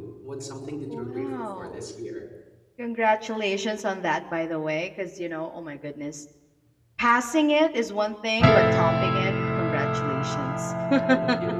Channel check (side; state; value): both; identical; correlation 1.00